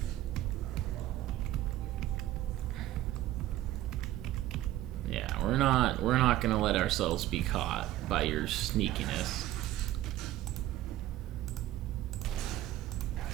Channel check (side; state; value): left; quieter; 14.4 dB